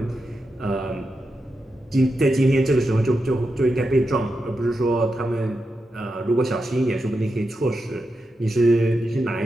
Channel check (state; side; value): normal; both; correlation 0.88